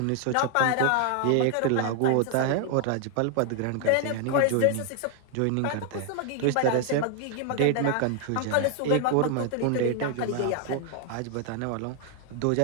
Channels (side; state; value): both; different; correlation 0.00